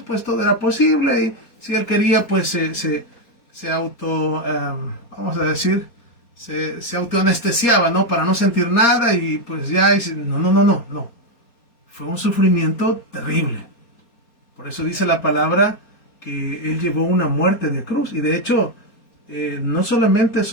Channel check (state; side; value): late; right; 4.2 ms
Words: pues todo era posible y si él quería, pues se auto, vamos a decir, se autoanestesiaba, ¿no? Para no sentir nada y pues ya, no. Fue un sufrimiento terrible. Por eso dice la palabra que él llevó una muerte de cruz. Y de hecho, no solamente